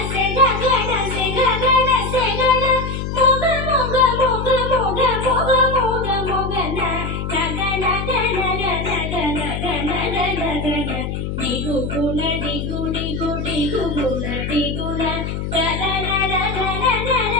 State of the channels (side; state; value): left; noise; hum, 4 dB below the sound